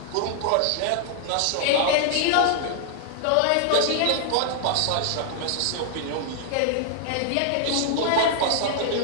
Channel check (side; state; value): both; different; correlation 0.00